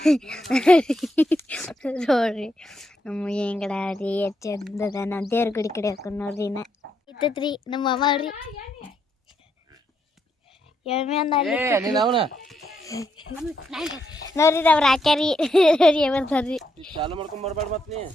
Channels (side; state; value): both; normal; correlation 0.78